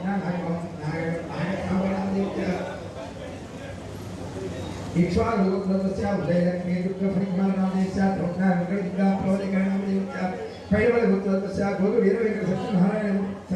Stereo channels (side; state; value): both; identical; correlation 1.00